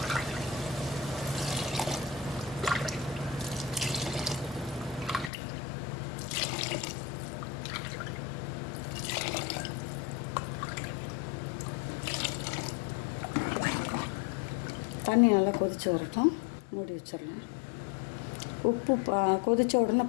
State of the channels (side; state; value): right; drops out; at 5.3 s